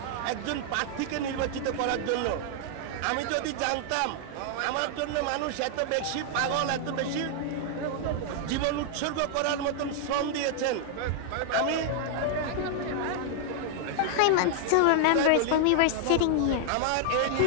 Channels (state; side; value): different; both; correlation -0.01